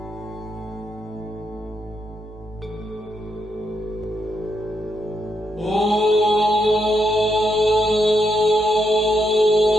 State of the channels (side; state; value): both; normal; correlation 0.80